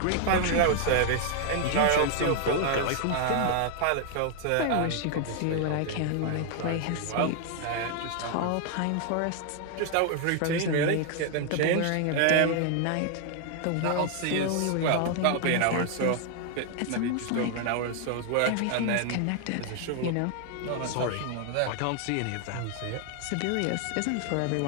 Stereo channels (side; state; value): both; different; correlation 0.00